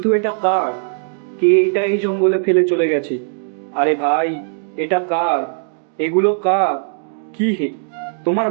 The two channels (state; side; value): silent; left; digital silence